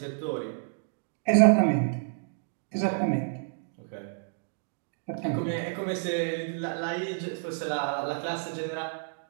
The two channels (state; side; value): silent; left; digital silence